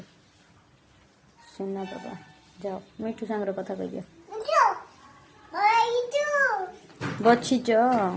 सुना पापा जाओ मिठू सांगर कथा कह दियो बचिच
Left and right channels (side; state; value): both; identical; correlation 1.00